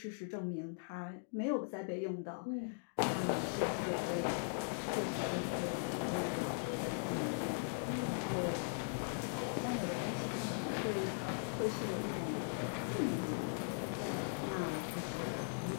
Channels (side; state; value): right; silent; digital silence